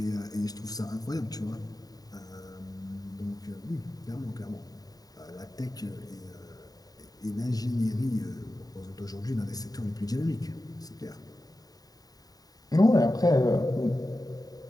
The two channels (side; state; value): right; late; 0.18 ms